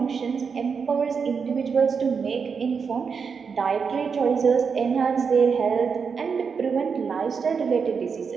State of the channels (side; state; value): left; quieter; 5.8 dB